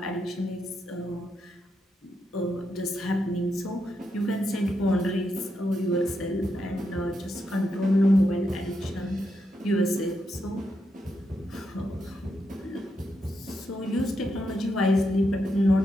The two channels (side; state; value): both; normal; correlation 0.83